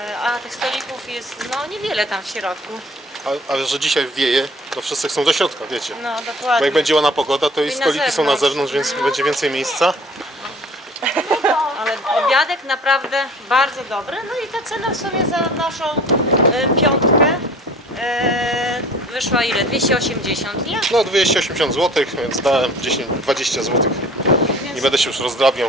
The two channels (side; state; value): both; normal; correlation 0.48